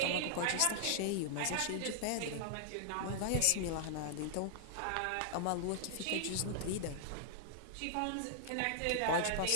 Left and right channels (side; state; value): both; different; correlation -0.01